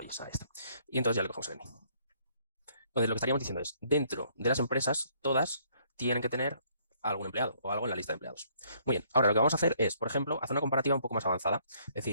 Ahí está. Y entonces ya le cogemos el name. Entonces, lo que estaríamos diciendo es, dentro de las empresas, todas tienen que tener algún empleado o algo en la lista de empleados. Muy bien, ahora lo que vamos a hacer es, por ejemplo, hacer una comparativa un poco más avanzada. Es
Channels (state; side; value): inverted; both; correlation -0.66